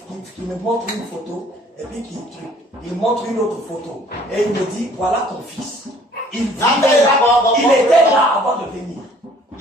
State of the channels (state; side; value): normal; both; correlation 0.56